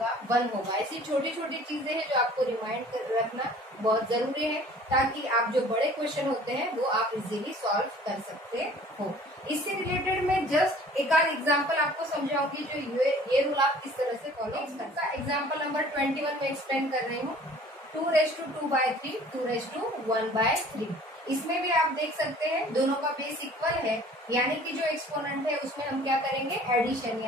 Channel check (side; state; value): both; normal; correlation 0.50